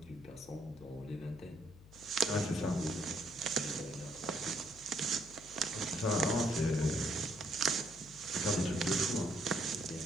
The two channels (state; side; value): noise; left; hum, 21 dB below the sound